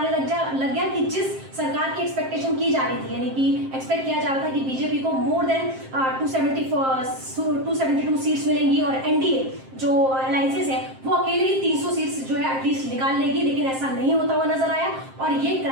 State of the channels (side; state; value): left; late; 7.6 ms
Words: लग गया कि जिस सरकार की एक्सपेक्टेशन की जा रही थी, यानी कि एक्सपेक्ट किया जा रहा था कि बीजेपी को मोर देन 272 सीट्स मिलेंगी और एनडीए जो अलायंसेस है वो अकेले ही 300 सीट्स जो है एटलीस्ट निकाल लेगी, लेकिन ऐसा नहीं होता हुआ नजर आया और ये